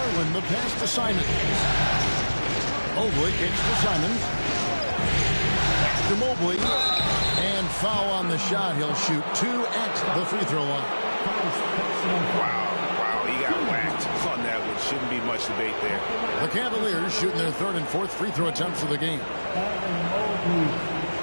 the pass to Simons. Mobley kicks to Simons. Back to Mobley. And foul on the shot. He'll shoot 2 at the free throw line. Wow, he got whacked on that one. Shouldn't be much debate there. The Cavaliers shooting their 3rd and 4th free throw attempts of the game. Mobley,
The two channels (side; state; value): both; inverted; correlation -1.00